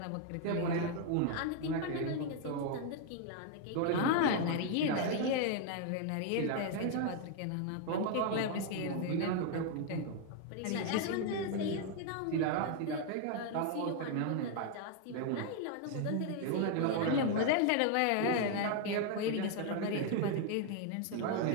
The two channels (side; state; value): both; different; correlation 0.00